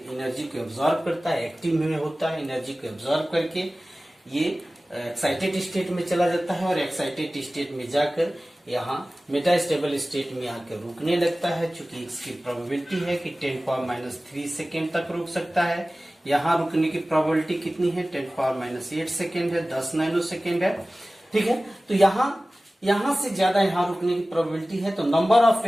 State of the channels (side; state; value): both; normal; correlation 0.97